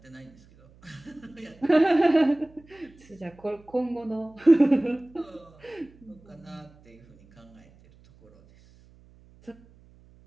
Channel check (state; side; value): noise; right; hum, 27 dB below the sound